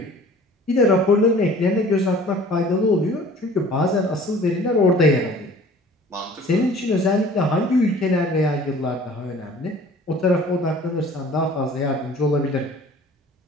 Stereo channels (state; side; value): normal; both; correlation 0.49